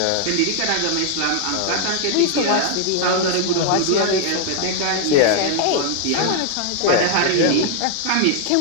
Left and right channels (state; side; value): different; both; correlation 0.00